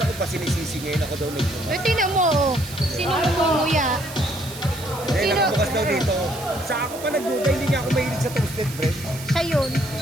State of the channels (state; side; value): noise; right; hiss, 13 dB below the sound